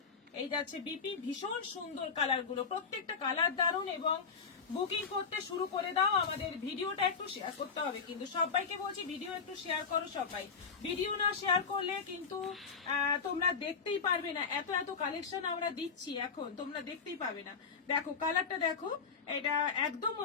এই যাচ্ছে বিপি। ভীষণ সুন্দর কালার গুলো, প্রত্যেকটা কালার দারুণ। এবং বুকিং করতে শুরু করে দাও। আমাদের ভিডিওটা একটু শেয়ার করতে হবে, কিন্তু সবাইকে বলছি ভিডিও একটু শেয়ার করো সবাই। ভিডিও না শেয়ার করলে কিন্তু তোমরা দেখতেই পারবে না। এত এত কালেকশন আমরা দিচ্ছি এখন, তোমরা দেখতেই পাবে না। দেখো কালারটা দেখো, এটা একদম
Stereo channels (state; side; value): quieter; right; 5.6 dB